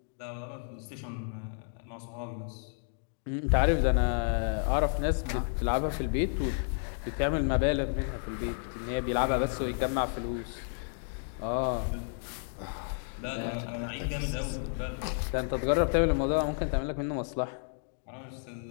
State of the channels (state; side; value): silent; right; digital silence